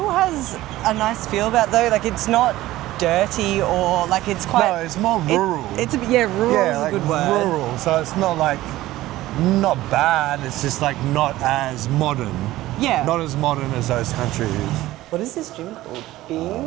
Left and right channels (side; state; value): left; quieter; 16.3 dB